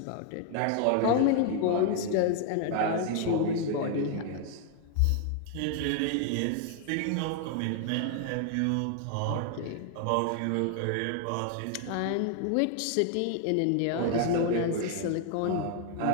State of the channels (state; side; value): different; both; correlation 0.00